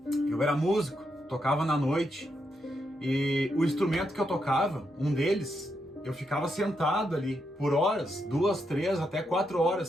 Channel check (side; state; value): both; normal; correlation 0.82